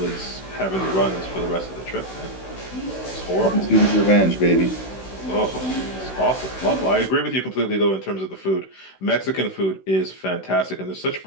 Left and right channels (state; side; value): late; right; 16 ms